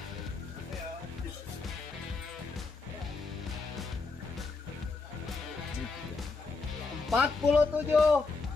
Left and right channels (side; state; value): right; quieter; 4.1 dB